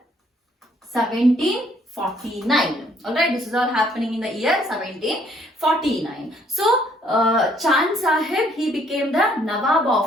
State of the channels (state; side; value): normal; both; correlation 0.65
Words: 1749. Alright, this is all happening in the year 1749. So, Chand Sahib, he became the Nawab